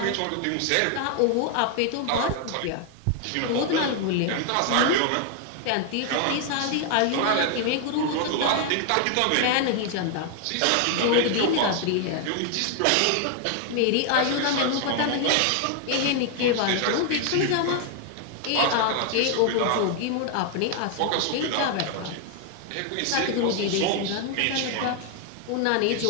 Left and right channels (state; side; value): different; both; correlation 0.00